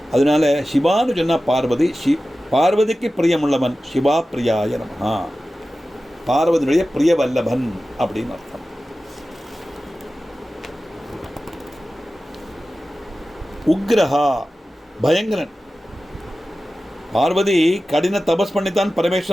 அதனால சிவான்னு சொன்னால் பார்வதி, பார்வதிக்கு பிரியமுள்ளவன், சிவா பிரியாய நமஹா, பார்வதியுடைய பிரிய வல்லபன் அப்படின்னு அர்த்தம். உக்ரஹா பயங்கரன். பார்வதி கடின தபஸ் பண்ணித்தான்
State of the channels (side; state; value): both; normal; correlation 0.95